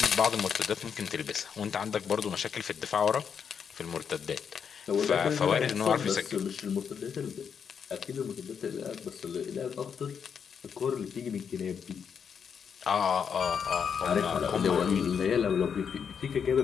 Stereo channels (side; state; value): right; quieter; 7.1 dB